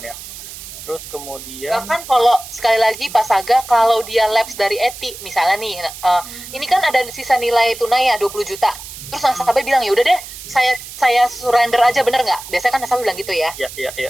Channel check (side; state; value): right; noise; hiss, 13 dB below the sound